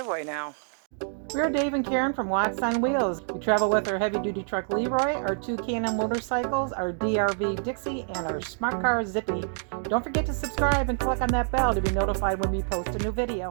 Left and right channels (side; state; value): left; silent; 60 dB below the other